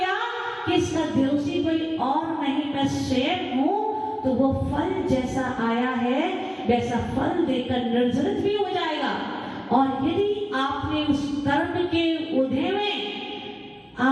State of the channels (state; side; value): identical; both; correlation 1.00